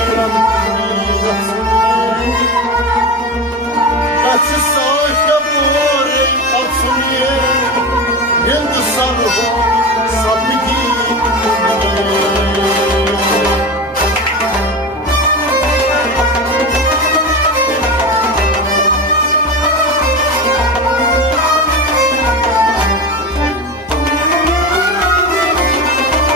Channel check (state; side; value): normal; both; correlation 0.24